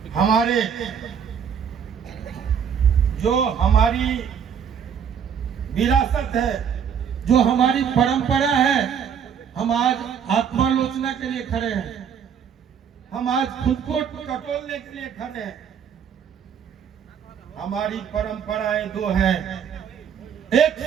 हमारे जो हमारी विरासत है, जो हमारी परंपरा है, हम आज आत्मालोचना के लिए खड़े हैं, हम आज खुद को टटोलने के लिए खड़े हैं। हमारी परंपराएं दो हैं, एक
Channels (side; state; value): left; quieter; 7.7 dB